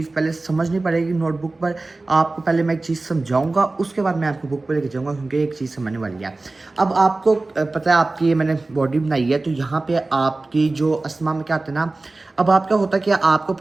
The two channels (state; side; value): quieter; left; 3.2 dB